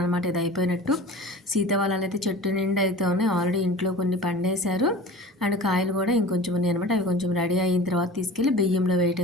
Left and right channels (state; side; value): normal; both; correlation 0.39